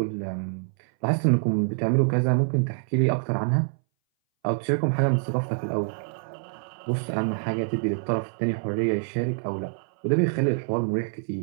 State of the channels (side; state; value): left; silent; 60 dB below the other